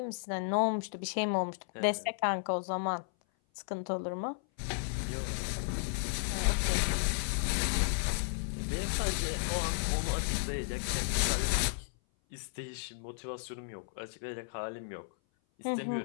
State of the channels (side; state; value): right; silent; 55 dB below the other